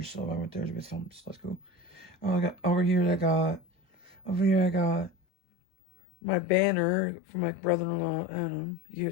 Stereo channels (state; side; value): drops out; right; at 5.1 s